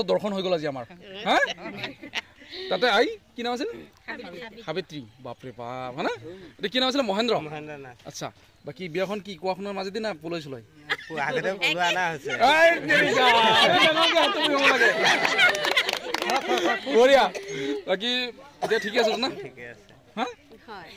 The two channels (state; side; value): identical; both; correlation 1.00